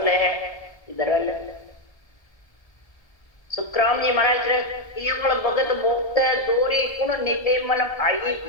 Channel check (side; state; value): right; late; 1.3 ms